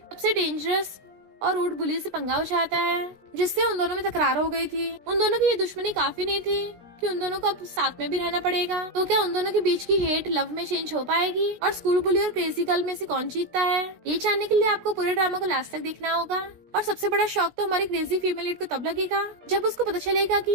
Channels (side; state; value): left; late; 17 ms